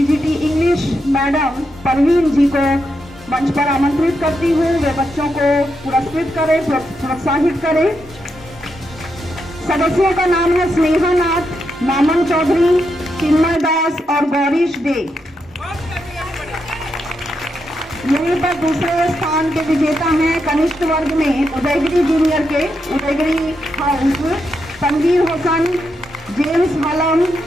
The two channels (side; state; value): both; normal; correlation 0.83